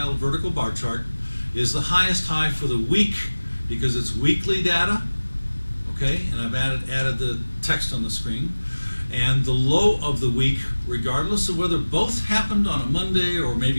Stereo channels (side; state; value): both; inverted; correlation -1.00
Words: vertical bar chart, is the highest high for the week because it's weekly data, okay, and I've added the text on the screen. And the low of the week, regardless of whether both happened on a Monday or